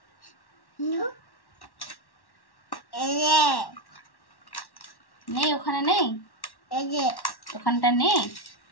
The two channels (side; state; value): right; late; 1.1 ms